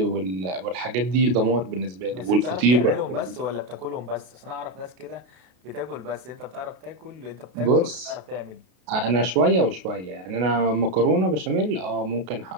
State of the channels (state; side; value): late; left; 33 ms